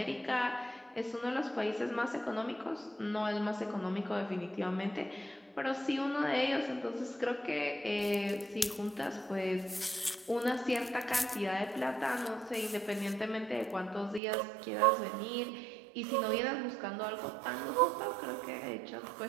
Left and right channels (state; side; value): drops out; left; at 14.2 s